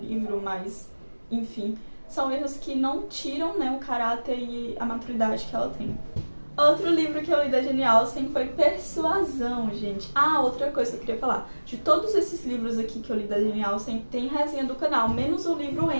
mas, enfim, são erros que não tiram, né, o caráter e a maturidade que ela tem. Outro livro que eu li da Jane Austen foi Persuasão, gente. Outra coisa que eu queria falar. De todos esses livros aqui que eu li da Jane Austen, tem resenha do canal, menos o livro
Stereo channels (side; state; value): both; inverted; correlation -1.00